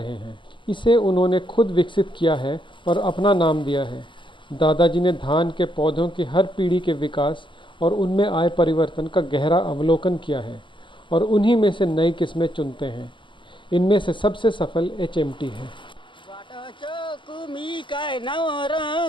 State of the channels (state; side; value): late; right; 0.24 ms